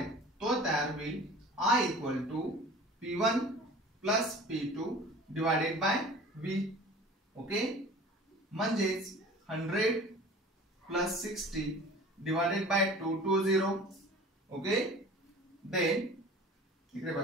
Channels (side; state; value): both; normal; correlation 0.42